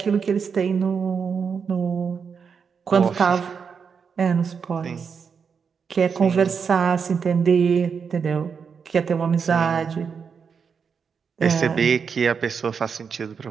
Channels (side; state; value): left; quieter; 6.2 dB